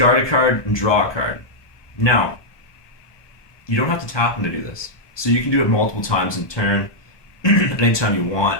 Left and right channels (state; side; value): late; right; 1.2 ms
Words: a card and draw a card. Now, you don't have to tap him to do this. So you can do it multiple times in turn, anytime you want.